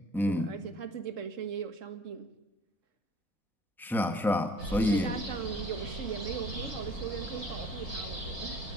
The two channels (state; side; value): normal; both; correlation 0.53